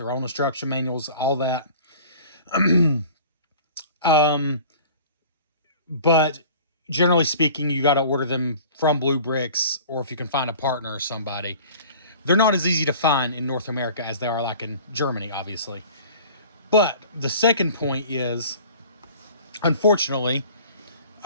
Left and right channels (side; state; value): both; inverted; correlation -0.45